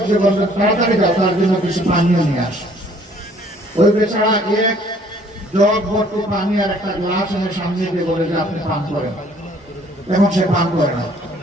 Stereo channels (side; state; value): both; normal; correlation 0.59